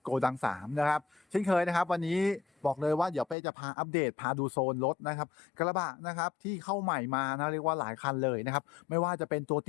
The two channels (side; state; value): right; drops out; at 3.4 s